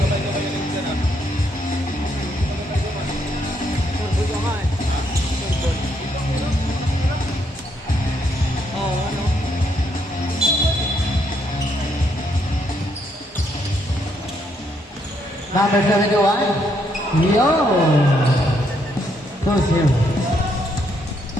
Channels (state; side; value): normal; both; correlation 0.74